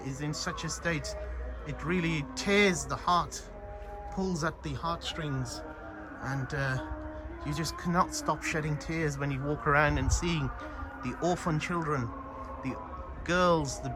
in such a state, it really tears the heart, pulls at the heartstrings, and you just cannot stop shedding tears when you walk around and seeing the orphan children, the girls, the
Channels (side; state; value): both; identical; correlation 1.00